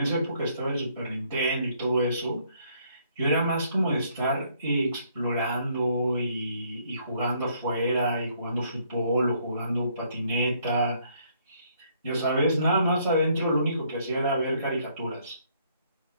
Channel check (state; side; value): inverted; both; correlation -0.67